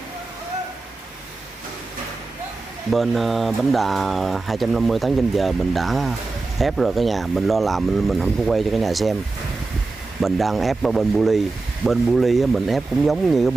Bên bánh đà 250 tấn trên giờ mình đã ép rồi cả nhà, mình lo làm mình không có quay cho cả nhà xem. Mình đang ép ở bên bu ly mình ép cũng giống như cái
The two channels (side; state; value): left; quieter; 3.6 dB